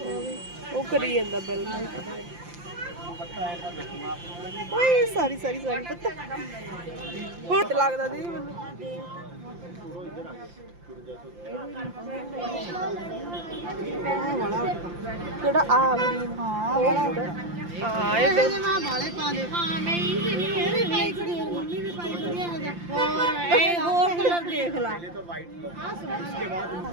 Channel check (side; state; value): left; late; 5.8 ms